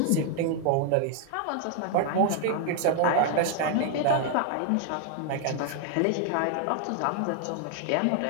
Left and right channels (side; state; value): both; different; correlation 0.00